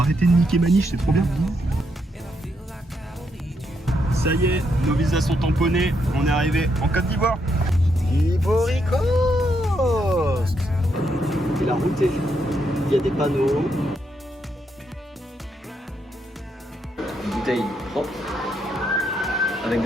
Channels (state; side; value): normal; both; correlation 0.78